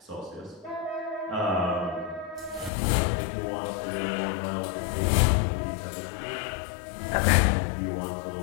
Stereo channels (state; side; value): drops out; right; at 2.7 s